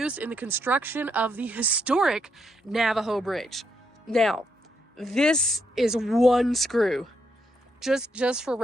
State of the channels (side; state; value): both; normal; correlation 0.78